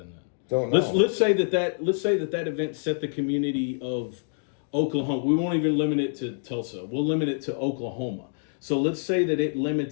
that? Don't know. Let's say that event set the community of Oklahoma. We won't even limit it to Tulsa. We'll limit it to Oklahoma. So let's say that it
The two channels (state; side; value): silent; right; digital silence